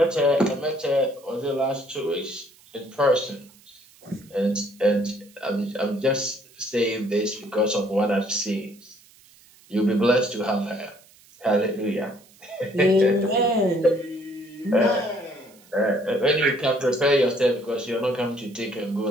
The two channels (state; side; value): noise; right; hiss, 27 dB below the sound